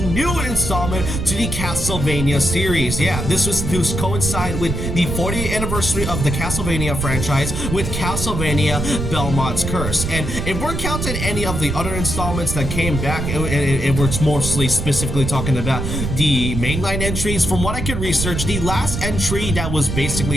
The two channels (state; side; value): noise; right; rumble, 3 dB below the sound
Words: installment to the Castlevania series. Yeah, this was to coincide with the 40th anniversary of the Castlevania franchise with Castlevania Belmont's Curse. And if we're counting any of the other installments that came back, it was mostly specifically talking about the mainline entries. From what I could research, the last entry that was